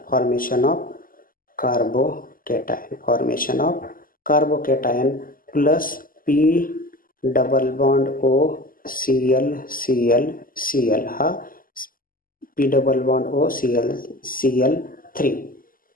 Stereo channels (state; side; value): late; right; 0.41 ms